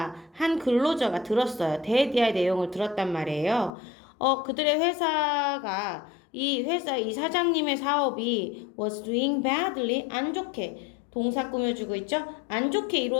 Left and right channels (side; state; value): right; drops out; at 3.7 s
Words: 한 근로자가 들었어요. dead이야의 내용을 들었단 말이에요. 그들의 회사가 이 사장님의 사업이 was doing badly, 안 좋게 동사 꾸며주고 있죠? 안 좋게